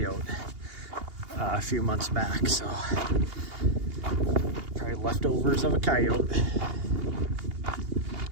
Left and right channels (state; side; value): late; left; 2.8 ms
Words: a few months back. So probably leftovers of a coyote.